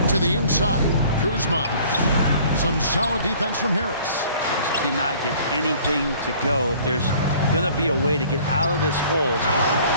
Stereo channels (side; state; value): both; inverted; correlation -0.53